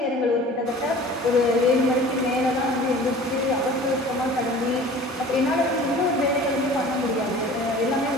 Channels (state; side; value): normal; both; correlation 0.44